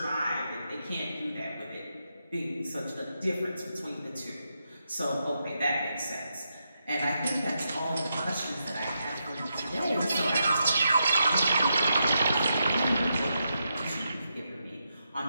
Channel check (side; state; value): both; inverted; correlation -0.84